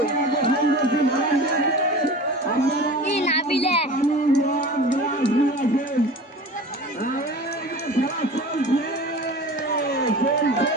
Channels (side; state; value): both; normal; correlation 0.37